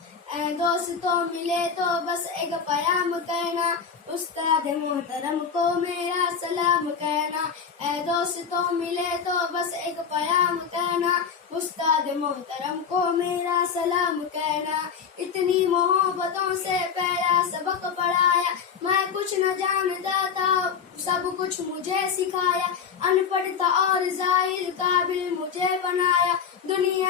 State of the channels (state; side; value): quieter; right; 6.6 dB